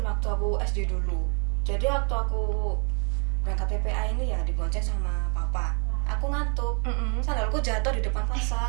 waktu aku SD dulu. Jadi waktu aku berangkat PPA ini ya dibonceng sama papa. Aku ngantuk. Sandalku jatuh di depan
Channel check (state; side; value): quieter; left; 39.3 dB